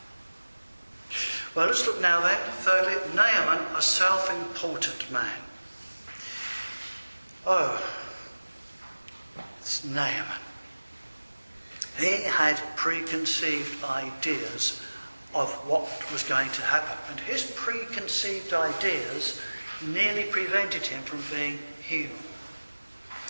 Well, let's look now then, thirdly, Naaman, a self-important man. Oh, it's Naaman. He had preconceived ideas of what was going to happen. And his preconceived ideas nearly prevented him from being healed.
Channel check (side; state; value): both; inverted; correlation -1.00